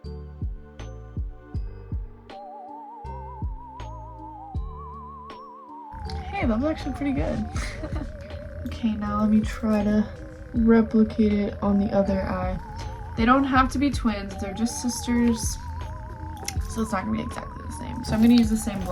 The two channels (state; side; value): identical; both; correlation 1.00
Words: Hey, that was actually pretty good. Okay, now let me try to replicate it on the other eye. They don't have to be twins, they're just sisters, so it's not gonna be exactly the same. So I'm gonna use the same